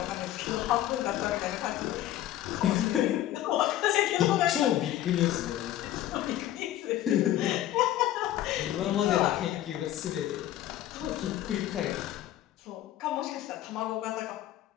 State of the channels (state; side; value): quieter; right; 13.2 dB